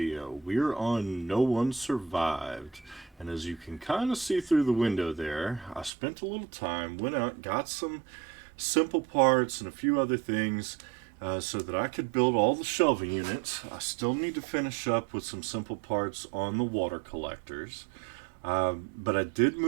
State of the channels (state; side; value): drops out; left; at 5.9 s